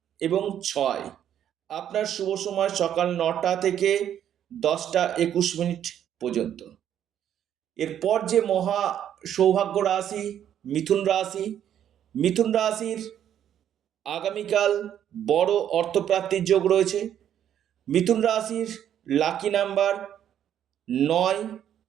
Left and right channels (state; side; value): quieter; left; 10.1 dB